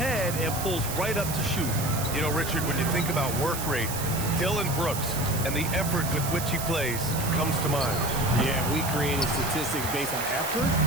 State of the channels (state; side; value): noise; right; hiss, 6 dB below the sound